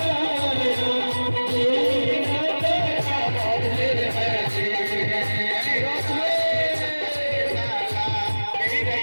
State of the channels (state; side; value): inverted; both; correlation -1.00